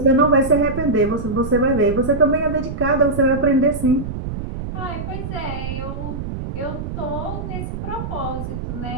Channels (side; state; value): right; noise; rumble, 6 dB below the sound